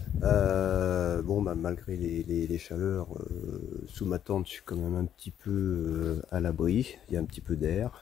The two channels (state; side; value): quieter; right; 10.0 dB